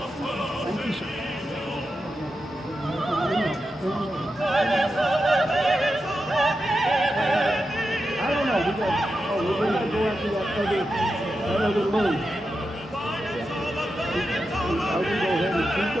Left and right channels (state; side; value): normal; both; correlation 0.89